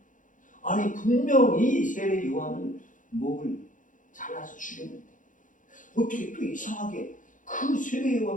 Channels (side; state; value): right; late; 0.38 ms